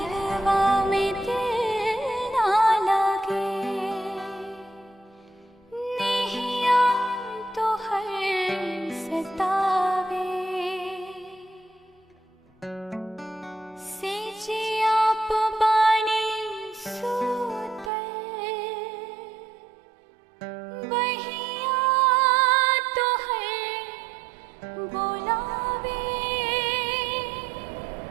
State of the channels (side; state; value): left; drops out; at 17.9 s